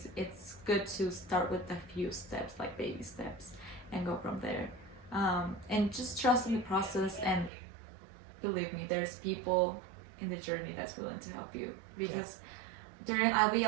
it's good to start with a few steps, like baby steps, and go from there. And just trust in the process, and believe me, there's people in the journey that's willing to help you. Because I'll be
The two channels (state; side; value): drops out; left; at 7.5 s